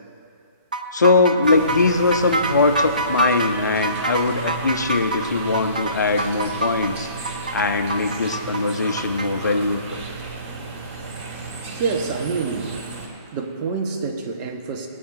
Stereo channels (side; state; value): both; inverted; correlation -0.52